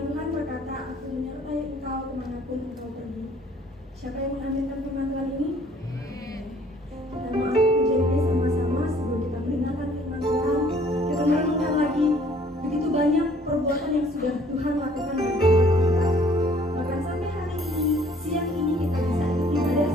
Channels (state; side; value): normal; both; correlation 0.58